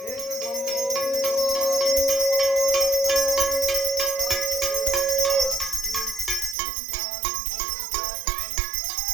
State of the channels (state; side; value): drops out; left; at 6.6 s